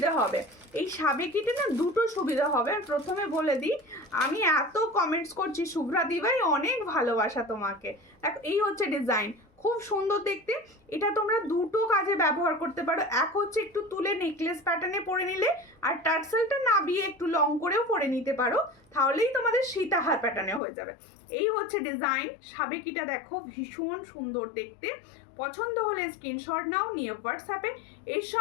হবে, এই সাবেকিটা না দুটো সুবিধা হবে। প্রথমে বলে দিই, আমি এত কমেন্টস করছি শুভ্রা দিভাই, অনেক ভালোবাসা তোমাকে। দেখো এই হচ্ছে ডিজাইন, খুব সুন্দর দেখতে। এটা তোমরা দুটো কাজে ব্যবহার করতে পারো। এক হচ্ছে একটু তুলে নেকলেস প্যাটার্নে পরে নিলে, আর টার্সেলটা নাবিয়ে একটু লং করেও পরে নিতে পারো, তাহলেই তোমাদের সীতাহার প্যাটার্নে হয়ে যাবে। এই হচ্ছে ডিজাইন, সাবেকিটা দেখো ভীষণ সুন্দর দেখতে। পছন্দ হলে স্ক্রিনশট নাও, নিয়ে হোয়াটসঅ্যাপে। এর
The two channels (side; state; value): right; drops out; at 20.6 s